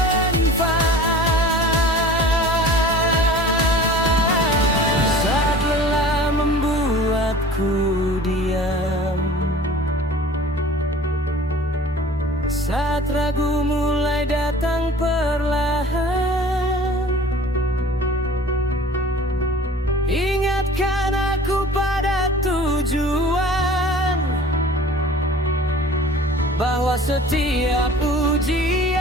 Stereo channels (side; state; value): both; normal; correlation 0.44